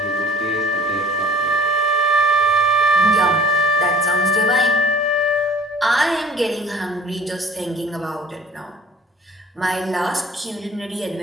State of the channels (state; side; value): normal; both; correlation 0.50